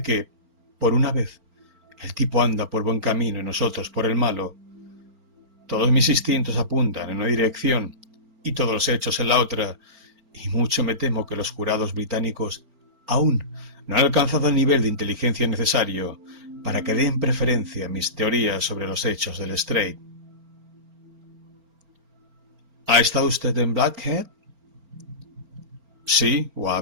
que, por una vez, el tipo anda por buen camino y nosotros por el malo. Todos mis instintos apuntan en una dirección y todos los hechos en la otra, y mucho me temo que los jurados británicos aún no han alcanzado el nivel de inteligencia necesario para que den preferencia a mis teorías sobre los hechos del Strait. ¿Ha estado usted en Blackhead? Sí,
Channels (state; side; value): late; left; 4.4 ms